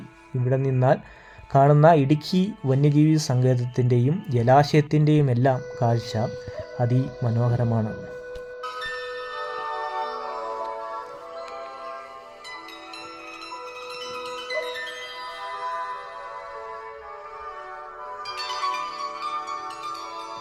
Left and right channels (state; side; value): identical; both; correlation 1.00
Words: ഇവിടെ നിന്നാൽ കാണുന്ന ഇടുക്കി വന്യജീവി സങ്കേതത്തിൻ്റെയും ജലാശയത്തിൻ്റെയും എല്ലാം കാഴ്ച അതിമനോഹരമാണ്.